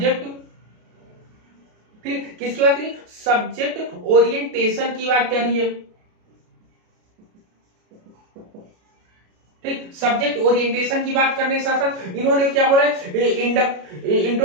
ठीक, किसकी बात करिए? सब्जेक्ट ओरिएंटेशन की बात करी है, ठीक। सब्जेक्ट ओरिएंटेशन की बात करने के साथ साथ इन्होंने क्या बोला है?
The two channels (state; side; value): late; left; 33 ms